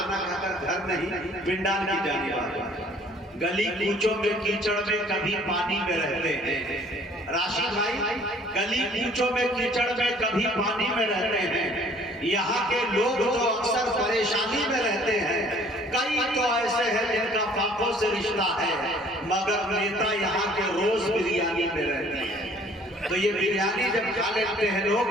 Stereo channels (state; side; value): normal; both; correlation 0.55